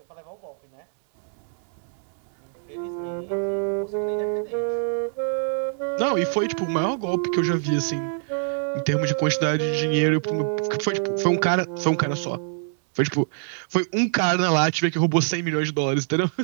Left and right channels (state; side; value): silent; left; 62 dB below the other